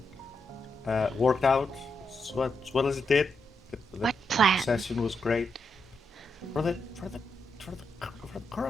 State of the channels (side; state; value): both; normal; correlation 0.83